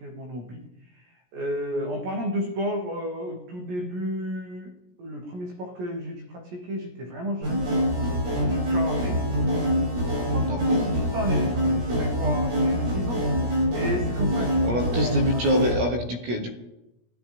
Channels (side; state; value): left; late; 17 ms